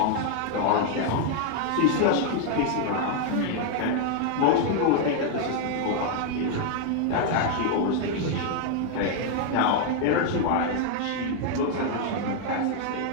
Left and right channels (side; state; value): both; different; correlation 0.00